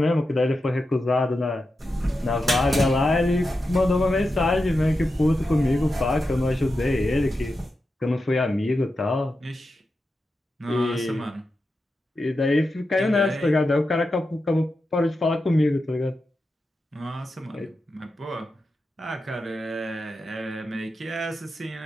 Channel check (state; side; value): normal; both; correlation 0.89